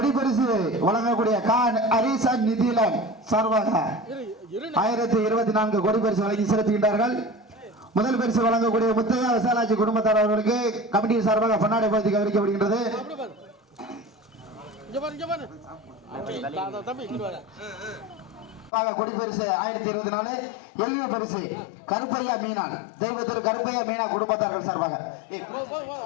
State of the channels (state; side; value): drops out; right; at 18.7 s